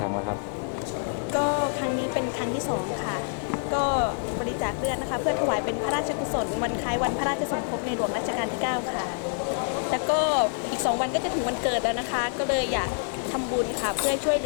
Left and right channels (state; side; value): silent; right; 60 dB below the other